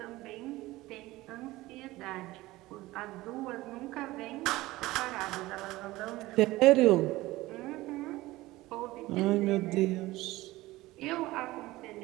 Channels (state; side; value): quieter; left; 18.5 dB